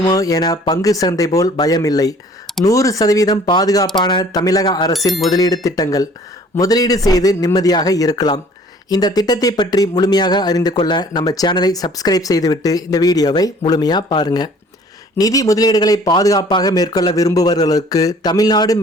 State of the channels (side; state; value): both; normal; correlation 0.53